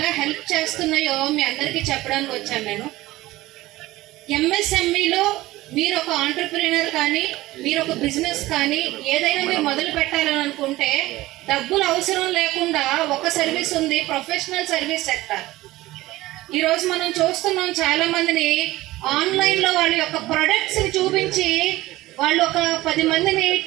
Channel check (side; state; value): left; quieter; 17.7 dB